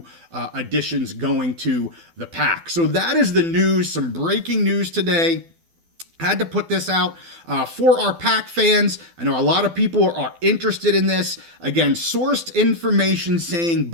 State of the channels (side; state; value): left; late; 12 ms